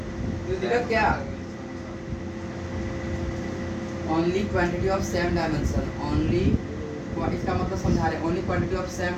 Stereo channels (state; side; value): identical; both; correlation 1.00